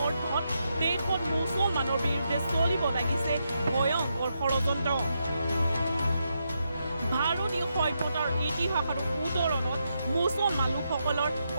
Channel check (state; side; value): inverted; both; correlation -0.83